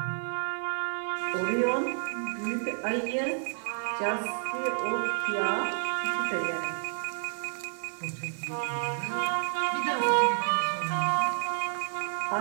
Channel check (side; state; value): left; silent; digital silence